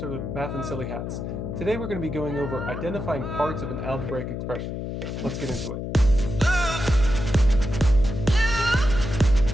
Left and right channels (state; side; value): noise; left; hum, 5 dB below the sound